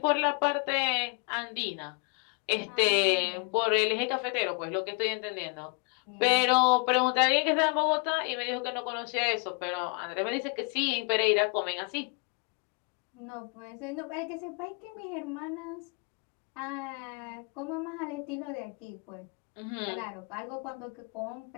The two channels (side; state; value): right; quieter; 35.1 dB